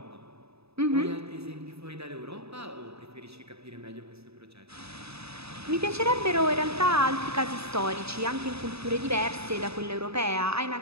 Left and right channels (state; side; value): late; left; 0.79 ms